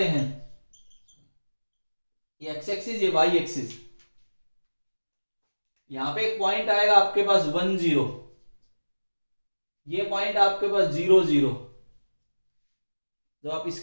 हैं, ये एक्स एक्सिस ये वाई एक्सिस, यहां पे एक पॉइंट आएगा आपके पास 1 0, ये पॉइंट आपके पास 0 0। जब आप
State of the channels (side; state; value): both; inverted; correlation -1.00